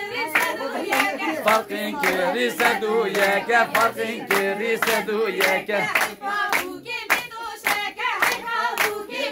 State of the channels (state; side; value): identical; both; correlation 1.00